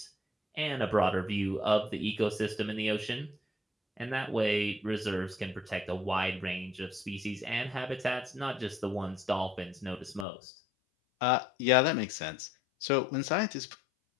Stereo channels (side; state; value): right; drops out; at 10.2 s